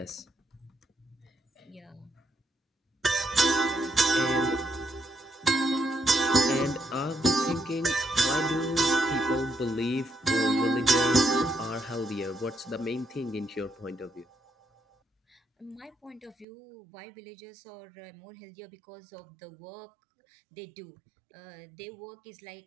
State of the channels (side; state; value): left; drops out; at 16.4 s